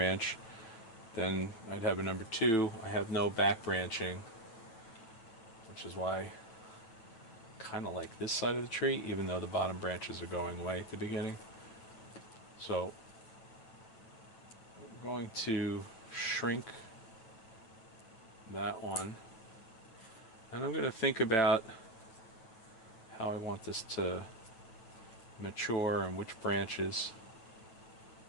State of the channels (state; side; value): late; right; 8.9 ms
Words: Then I'd have a number 2. I have no back branching, which is why I kind of like this side of the tree, even though the bottom branches are going away at the beginning. So I'm going to shrink that one, and I'm going to think about how I want this to mature and which branches.